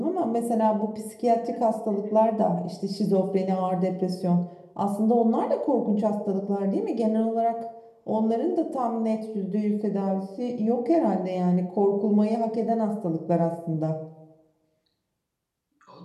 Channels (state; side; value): identical; both; correlation 1.00